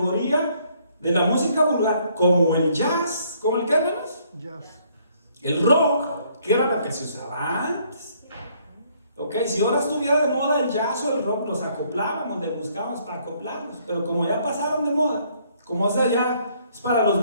de la música vulgar, como el jazz, ¿como el qué, hermanos? Jazz. El rock, que era lo que se usaba antes. Ok, si ahora estuviera de moda el jazz o el rock, los acoplábamos, le buscábamos para acoplarlos. Pero como ya pasaron de moda, como esa ya es para los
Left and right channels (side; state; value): both; inverted; correlation -0.66